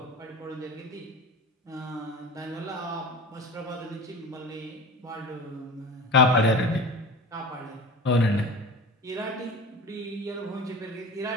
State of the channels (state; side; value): normal; both; correlation 0.34